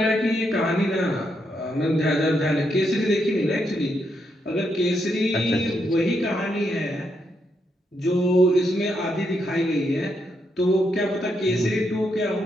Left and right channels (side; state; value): both; normal; correlation 0.79